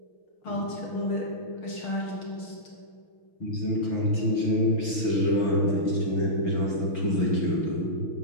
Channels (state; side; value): late; right; 6.0 ms